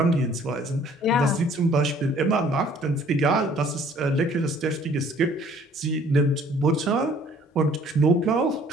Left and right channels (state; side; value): normal; both; correlation 0.56